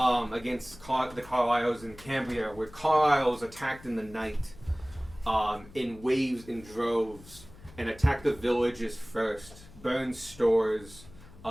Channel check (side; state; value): left; noise; hum, 20 dB below the sound